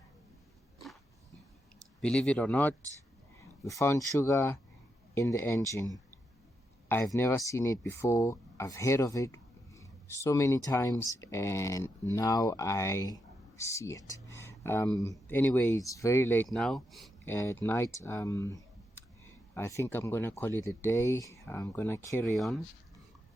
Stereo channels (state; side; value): normal; both; correlation 0.84